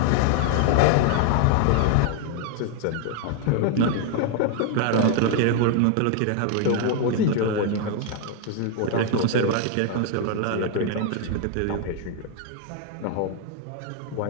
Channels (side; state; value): both; different; correlation 0.00